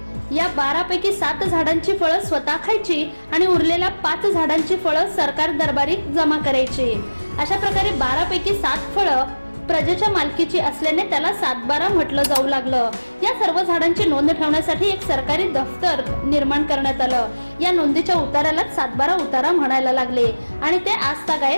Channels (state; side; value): inverted; both; correlation -1.00